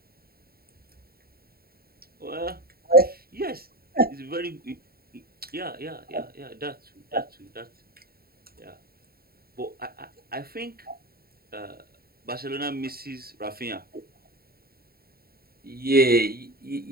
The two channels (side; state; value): left; late; 0.44 ms